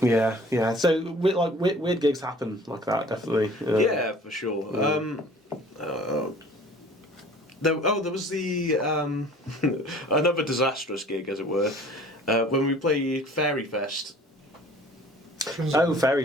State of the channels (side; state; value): both; normal; correlation 0.49